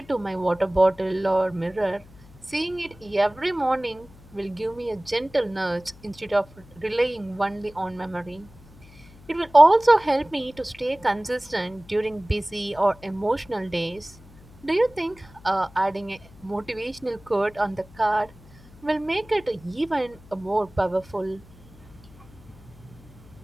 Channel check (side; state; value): left; noise; hum, 23 dB below the sound